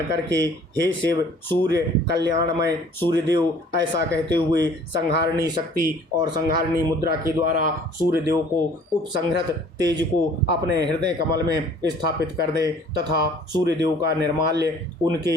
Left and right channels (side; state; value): both; normal; correlation 0.53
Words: करके हे शिव सूर्य कल्याणमय सूर्यदेव ऐसा कहते हुए संहारणी शक्ति और संहारणी मुद्रा के द्वारा सूर्यदेव को उपसंहृत तेज को अपने हृदय कमल में स्थापित कर दे तथा सूर्यदेव का निर्माल्य